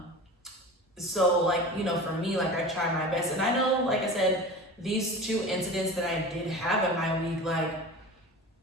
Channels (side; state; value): both; normal; correlation 0.34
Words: So for me, I try my best. And I know, like I said, these 2 incidents that I did have in my week,